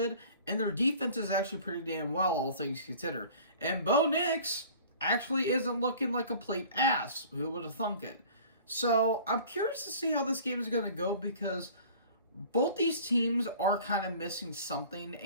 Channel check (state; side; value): inverted; both; correlation -0.46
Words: and their defense is actually pretty damn well, all things considered. And Bo Nix actually isn't looking like a complete ass. Who would have thunk it? So I'm curious to see how this game is going to go, because both these teams are kind of missing something,